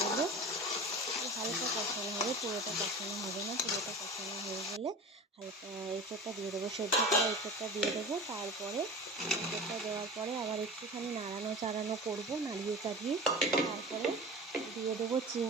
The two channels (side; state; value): both; normal; correlation 0.34